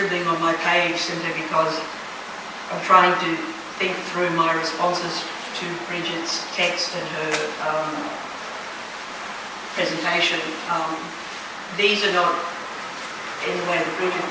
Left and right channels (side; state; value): both; identical; correlation 1.00